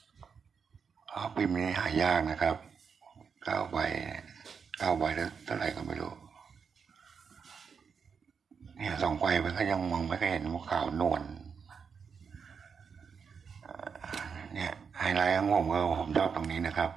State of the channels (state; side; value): quieter; left; 6.1 dB